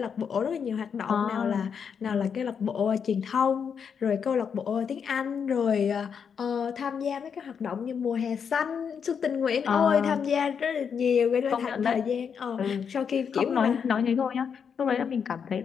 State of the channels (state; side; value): quieter; right; 6.9 dB